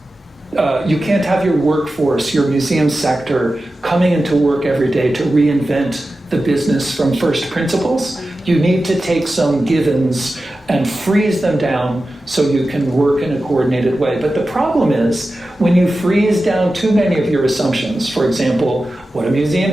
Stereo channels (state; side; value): normal; both; correlation 0.93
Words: You can't have your workforce, your museum sector, coming into work every day to reinvent the business from first principles. You need to take some givens and freeze them down so you can work in a coordinated way. But the problem is, when you freeze down too many of your assumptions, for example, what a museum